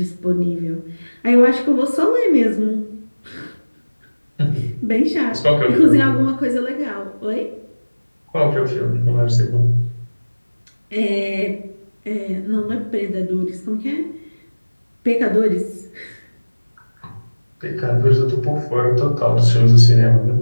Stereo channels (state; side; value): inverted; both; correlation -1.00